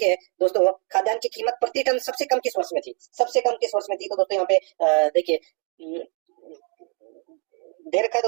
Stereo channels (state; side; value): quieter; left; 38.5 dB